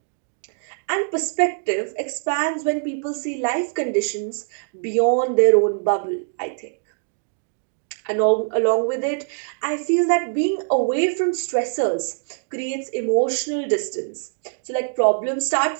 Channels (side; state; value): left; silent; digital silence